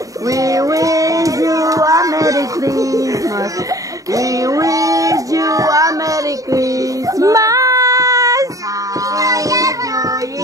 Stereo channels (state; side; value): late; left; 0.16 ms